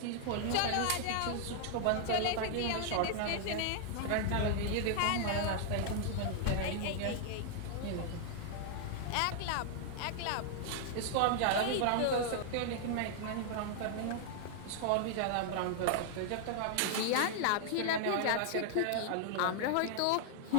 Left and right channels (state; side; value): different; both; correlation 0.00